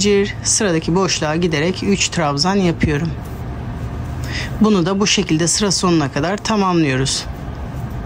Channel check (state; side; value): identical; both; correlation 1.00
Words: sıradaki boşluğa giderek 3 trabzan yapıyorum. Bunu da bu şekilde sıra sonuna kadar tamamlıyoruz.